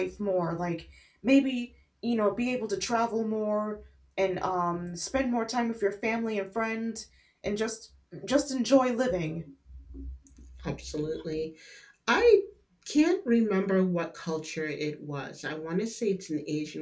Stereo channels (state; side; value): identical; both; correlation 1.00